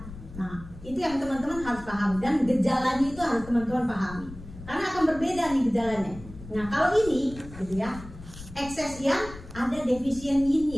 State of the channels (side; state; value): left; noise; rumble, 15 dB below the sound